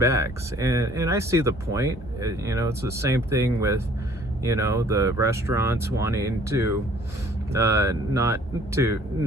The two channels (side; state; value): both; normal; correlation 0.56